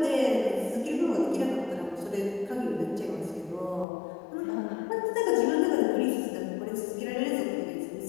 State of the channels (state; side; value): drops out; right; at 3.9 s